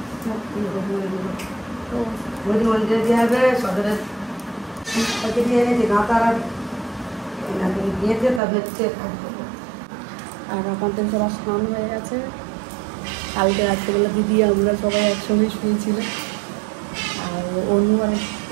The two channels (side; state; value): left; drops out; at 8.4 s